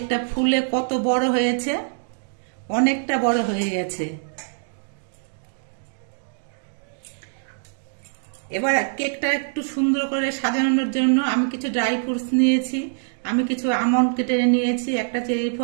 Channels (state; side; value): silent; left; digital silence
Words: ফুলে কত বড় হয়েছে, অনেকটা বড় হয়ে গেছে। এবার কেকটা একটু সুন্দর করে সাজানোর জন্য আমি কিছু ড্রাই ফ্রুটস নিয়েছি। আমি কিছু আমন্ড কেটে নিয়েছি, একটা চেরি